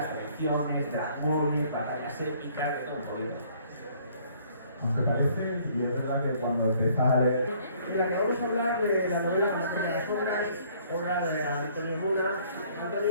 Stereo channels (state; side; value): inverted; both; correlation -0.60